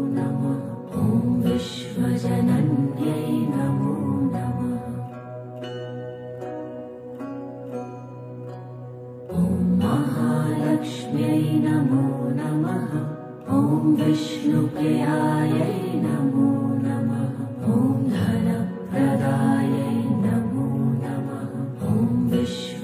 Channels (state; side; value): identical; both; correlation 1.00